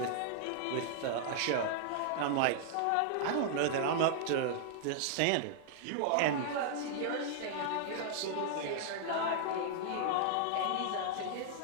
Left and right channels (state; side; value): different; both; correlation -0.01